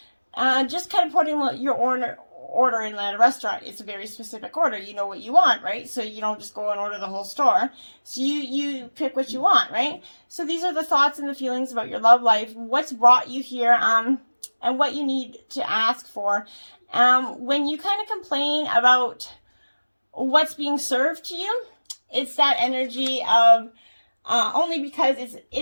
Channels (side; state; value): both; inverted; correlation -1.00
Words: Just kind of putting your order in at a restaurant. It's a very specific order. You know what you want, right? So you don't just go and order the whole store. So you pick what you want, right? So these are the thoughts and the feelings about your love life, what's brought you here, and what you need to ask for. When you kind of complain about what's being served to you, it's that energy of only because